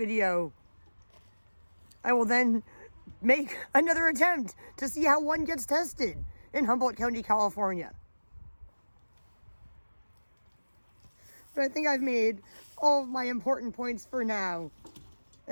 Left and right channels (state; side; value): inverted; both; correlation -1.00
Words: I will then make another attempt to see how one gets tested in Humboldt County, California. But I think I've made all of my important points for now.